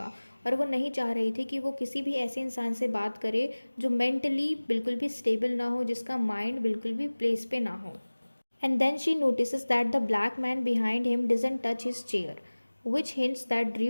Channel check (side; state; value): both; inverted; correlation -1.00